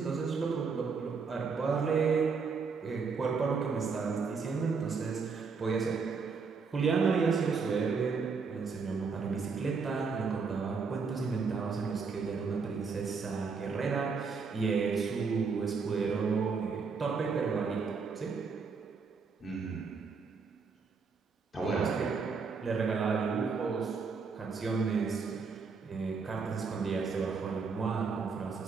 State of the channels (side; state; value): left; quieter; 5.1 dB